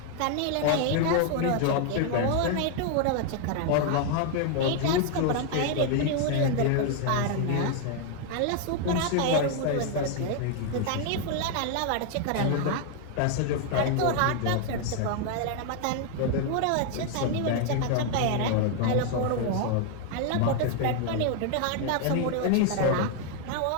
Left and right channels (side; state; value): both; different; correlation 0.00